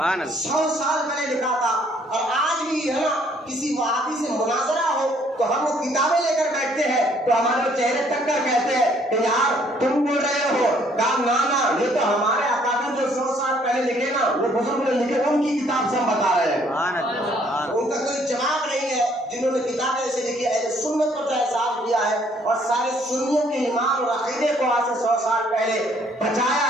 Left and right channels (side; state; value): both; normal; correlation 0.64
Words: 100 سال پہلے لکھا تھا، اور آج بھی ہے نا کسی وہابی سے مناظرہ ہو تو ہم وہ کتابیں لے کر بیٹھتے ہیں تو ہمارے چہرے تک کر کہتے ہیں کہ یار تم بول رہے ہو، کہا نانا یہ تو ہمارے اکابر جو 100 سال پہلے لکھے نا، وہ بزرگ نے لکھے، ان کی کتاب سے ہم بتا رہے ہیں۔ ان کا کوئی جواب نہیں ہے جنہوں نے کتابیں ایسے لکھی، اہل سنت پر جو احساس کیا ہے اور سارے سنیوں کے ایمان اور عقیدے کو آج سے 100 سال پہلے بچایا